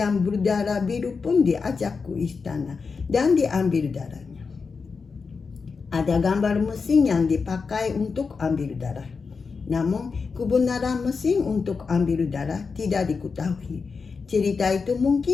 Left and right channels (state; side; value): quieter; right; 5.0 dB